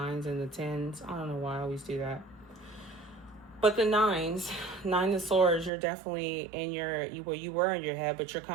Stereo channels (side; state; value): left; drops out; at 5.7 s